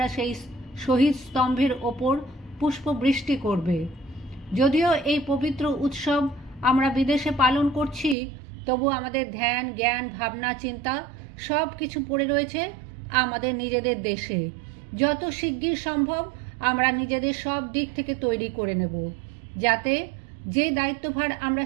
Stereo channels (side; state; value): left; drops out; at 8.2 s